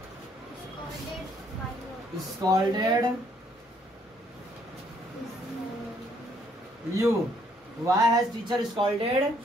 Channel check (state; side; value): normal; both; correlation 0.67